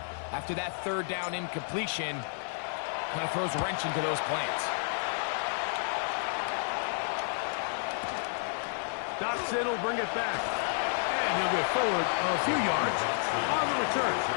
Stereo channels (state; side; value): silent; right; 57 dB below the other